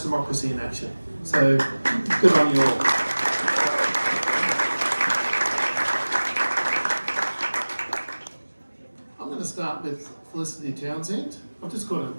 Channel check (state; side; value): inverted; both; correlation -1.00